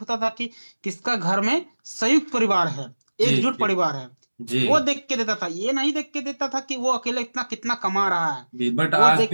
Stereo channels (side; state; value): both; inverted; correlation -1.00